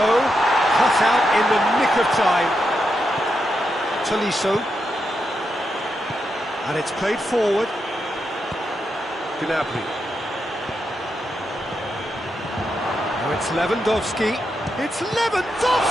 Cut out in the nick of time. Tolisso. And it's played forward. Gnabry. Now it's Lewandowski. It's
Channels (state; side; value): normal; both; correlation 0.84